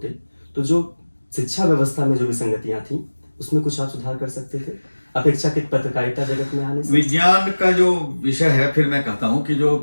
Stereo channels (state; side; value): inverted; both; correlation -1.00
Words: तो जो शिक्षा व्यवस्था में जो विसंगतियां थी उसमें कुछ आप सुधार कर सकते थे अपेक्षाकृत पत्रकारिता जगत में आने से। विज्ञान का जो विषय है, फिर मैं कहता हूँ कि